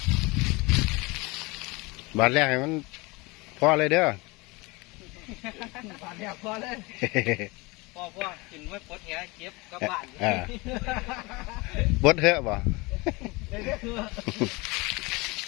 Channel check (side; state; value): right; quieter; 24.8 dB